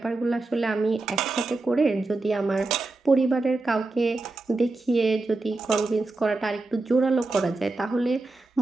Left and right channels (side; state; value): left; quieter; 3.3 dB